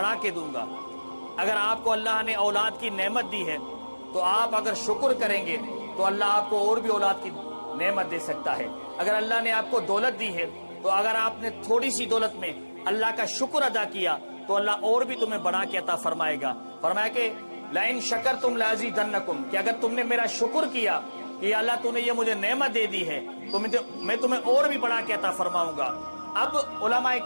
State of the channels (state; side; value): inverted; both; correlation -1.00